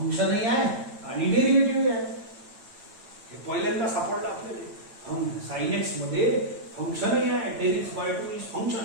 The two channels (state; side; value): late; left; 9.0 ms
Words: आहे आणि डेरिव्हेटिव्ह आहे. हे पहिल्यांदा सापडलं आपल्याला. sin x मध्ये फंक्शनही आहे. 10x by 2 इज